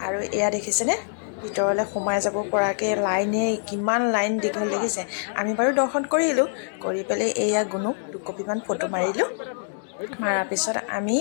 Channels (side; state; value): right; silent; digital silence